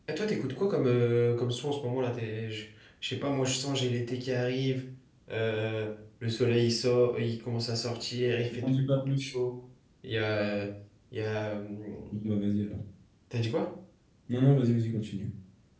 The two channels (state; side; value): identical; both; correlation 1.00